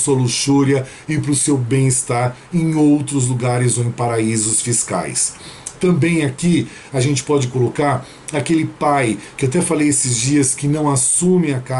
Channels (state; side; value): identical; both; correlation 1.00